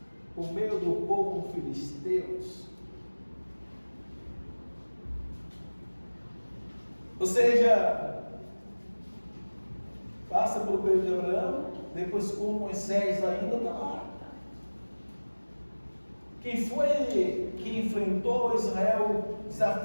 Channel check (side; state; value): both; inverted; correlation -1.00